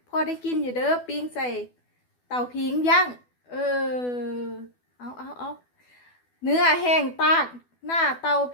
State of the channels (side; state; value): right; late; 12 ms